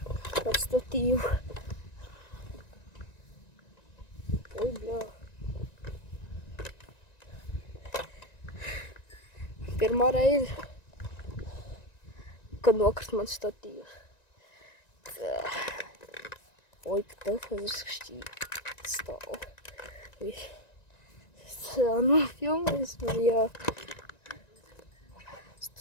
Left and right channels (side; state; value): right; late; 1.9 ms